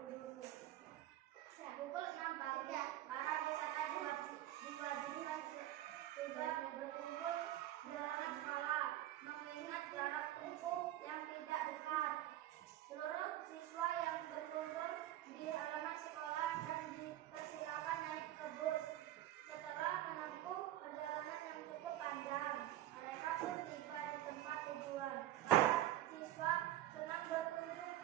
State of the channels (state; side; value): quieter; left; 13.9 dB